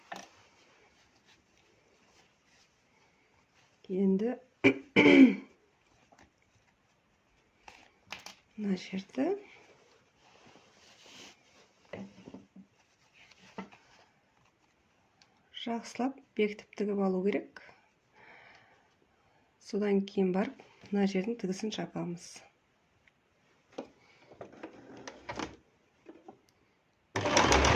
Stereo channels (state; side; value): identical; both; correlation 1.00